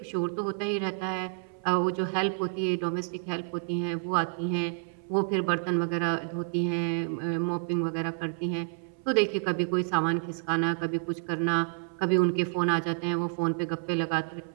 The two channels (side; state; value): left; silent; 58 dB below the other